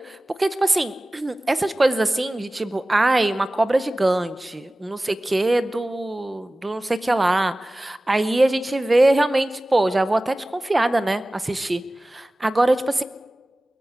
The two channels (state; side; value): normal; both; correlation 0.97